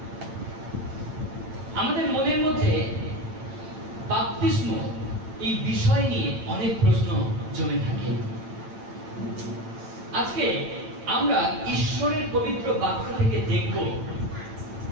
আমাদের মনের মধ্যে বাপ্তিস্ম এই বিষয় নিয়ে অনেক প্রশ্ন জমে থাকে। আজকে আমরা ঈশ্বরের পবিত্র বাক্য থেকে দেখব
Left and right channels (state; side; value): late; left; 8.9 ms